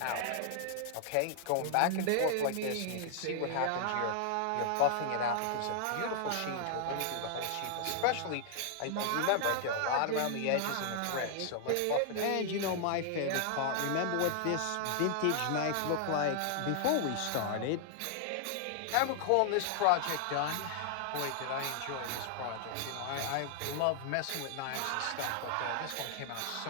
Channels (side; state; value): both; different; correlation -0.01